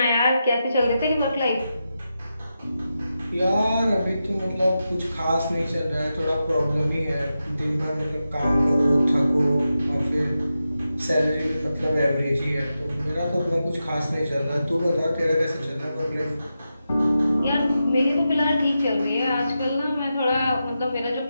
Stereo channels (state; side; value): inverted; both; correlation -0.89